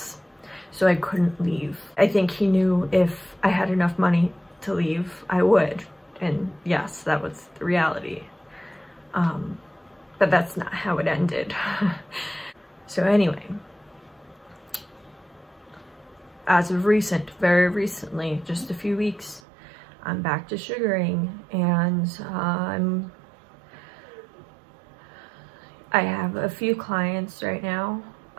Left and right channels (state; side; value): drops out; left; at 19.4 s